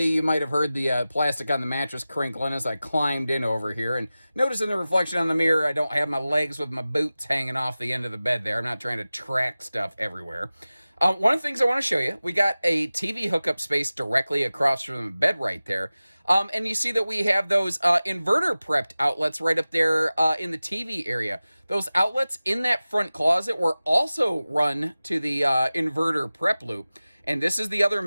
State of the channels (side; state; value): both; inverted; correlation -0.97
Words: you might have heard the plastic on the mattress crinkling as I climbed in over here, and notice in the reflection on the mirror, I don't have my legs with my boots hanging off the end of the bed there. I'm not trying to track stuff everywhere. One of the things I want to show you, we got a TV hookup space directly across from the bed right there. And you see that we have those inverter prepped outlets right up there in the TV area. Those outlets in that front closet were also run to the inverter prep loop. And this is the other